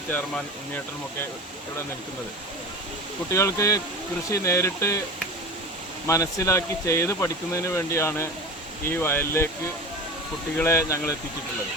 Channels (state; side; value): normal; both; correlation 0.31